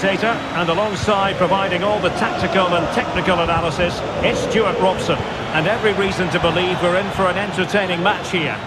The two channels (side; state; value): both; identical; correlation 1.00